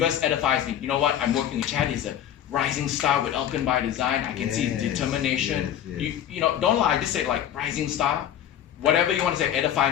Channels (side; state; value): right; quieter; 10.6 dB